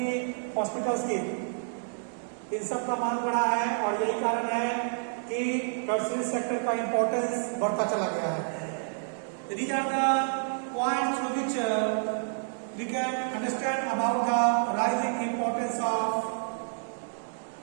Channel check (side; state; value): left; silent; digital silence